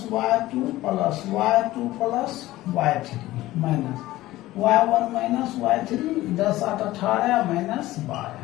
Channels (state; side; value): quieter; right; 16.7 dB